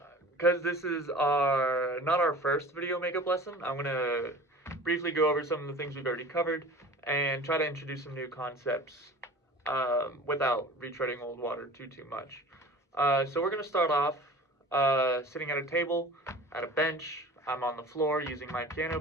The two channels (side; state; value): both; normal; correlation 0.41